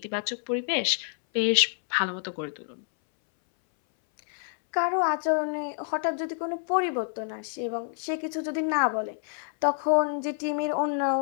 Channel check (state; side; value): silent; right; 60 dB below the other